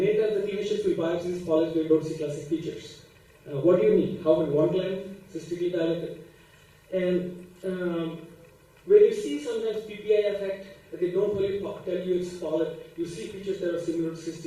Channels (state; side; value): identical; both; correlation 1.00